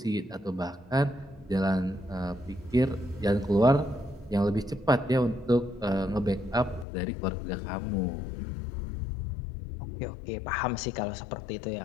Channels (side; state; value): right; drops out; at 6.9 s